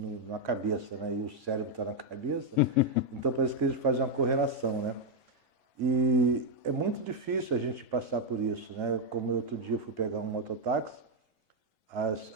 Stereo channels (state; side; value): normal; both; correlation 0.01